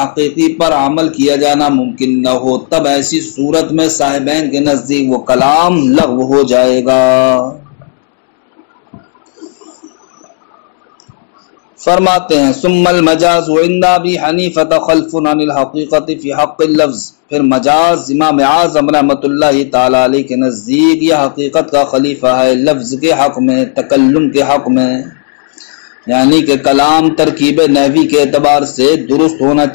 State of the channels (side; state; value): right; silent; 73 dB below the other